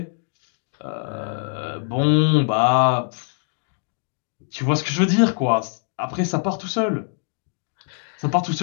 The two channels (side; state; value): right; silent; 59 dB below the other